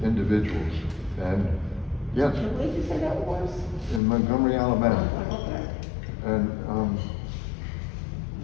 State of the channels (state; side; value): drops out; right; at 4.0 s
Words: individuals. And yes, Where did you say that was? in Montgomery, Alabama. Okay. And